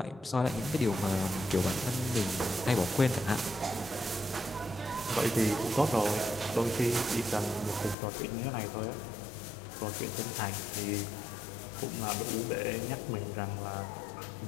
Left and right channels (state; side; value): drops out; right; at 8.0 s